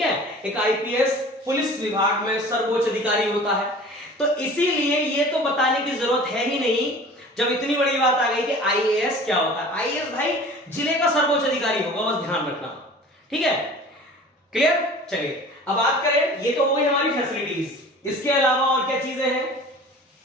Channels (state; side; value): normal; both; correlation 0.43